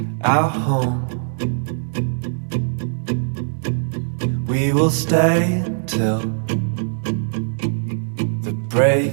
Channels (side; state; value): left; silent; 58 dB below the other